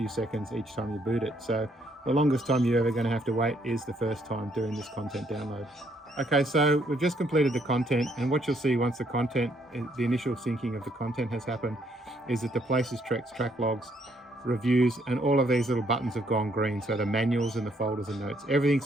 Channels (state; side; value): normal; both; correlation 0.70